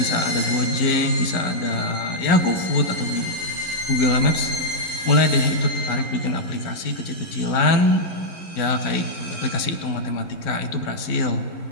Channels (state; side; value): late; right; 11 ms